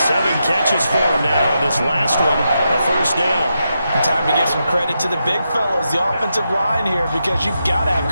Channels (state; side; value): inverted; both; correlation -0.85